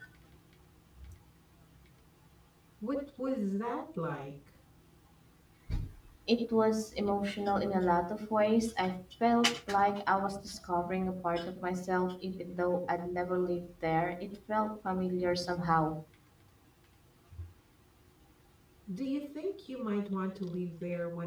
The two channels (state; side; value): identical; both; correlation 1.00